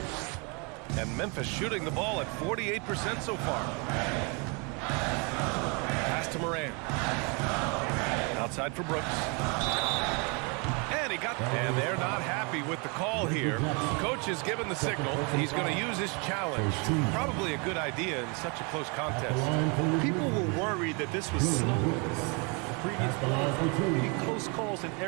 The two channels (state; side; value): quieter; left; 32.5 dB